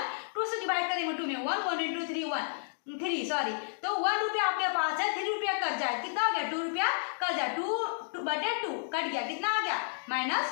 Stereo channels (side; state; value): right; silent; digital silence